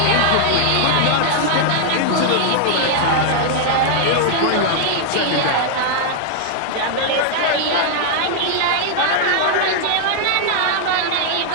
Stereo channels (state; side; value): different; both; correlation 0.00